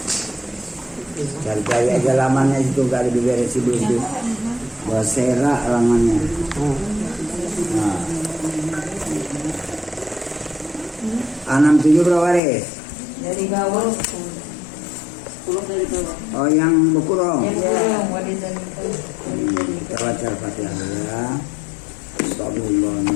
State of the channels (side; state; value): right; drops out; at 12.4 s